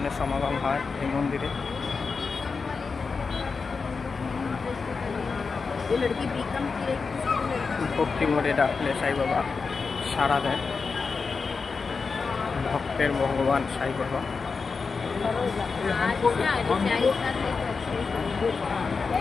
সমাগম হয় এই মন্দিরে। ভক্তি মোড়ে ডাকলে সাই বাবা সাড়া দেয়। ভক্তের ভগবান সাই বাবা।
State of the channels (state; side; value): quieter; right; 4.8 dB